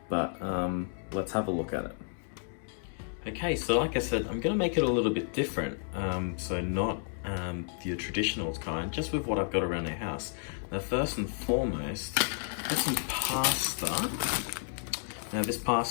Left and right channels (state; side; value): silent; right; digital silence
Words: but let's have a look at it. Okay, so like I said, I'm gonna make it a little bit different, so not your traditional kind, just with what I've got around the house. Now first and foremost, get some pasta. Now this